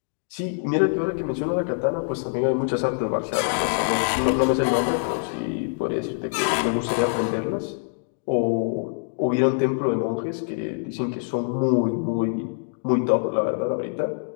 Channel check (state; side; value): silent; right; digital silence